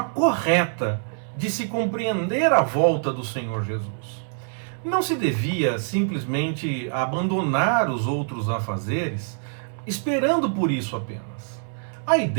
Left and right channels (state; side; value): silent; left; 61 dB below the other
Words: correta de se compreender a volta do Senhor Jesus. Não se devia simplesmente abandonar os outros afazeres, esperando por isso apenas. A